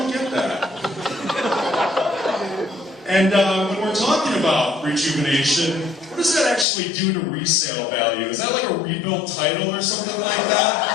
get that. And when we're talking about rejuvenation, what does that actually do to resale value? Is that like a rebuild title or something like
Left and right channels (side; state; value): right; drops out; at 6.7 s